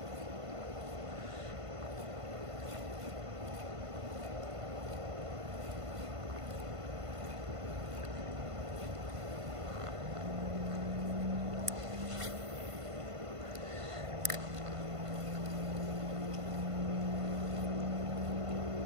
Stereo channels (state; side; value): late; left; 1.5 ms